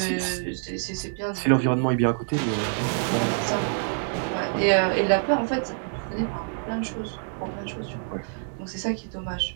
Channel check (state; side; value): silent; left; 61 dB below the other